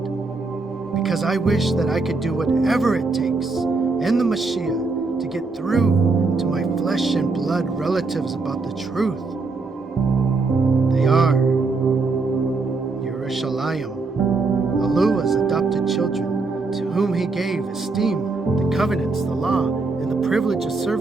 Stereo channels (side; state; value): left; quieter; 3.9 dB